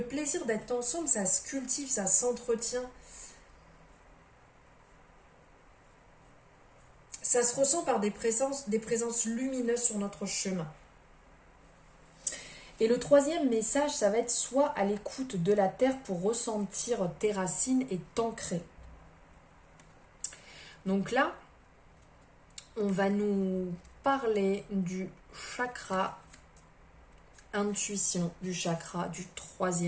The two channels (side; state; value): both; identical; correlation 1.00